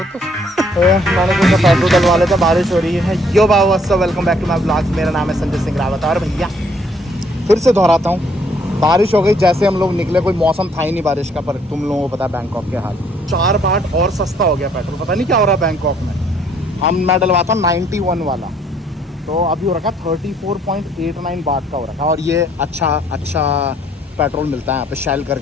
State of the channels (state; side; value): normal; both; correlation 0.64